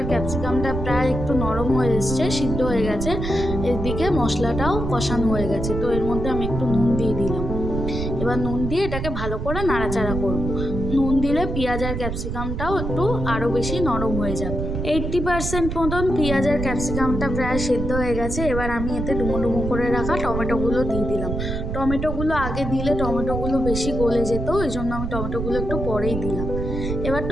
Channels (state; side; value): noise; right; rumble, 4 dB below the sound